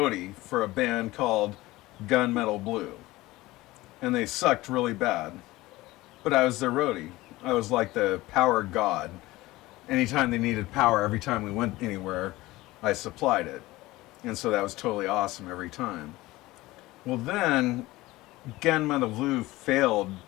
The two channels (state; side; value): quieter; right; 18.9 dB